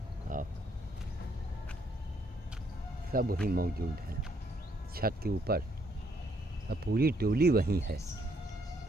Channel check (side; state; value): both; normal; correlation 0.71